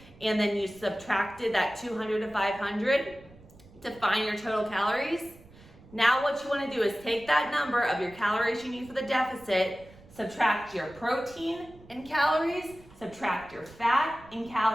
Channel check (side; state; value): right; noise; rumble, 23 dB below the sound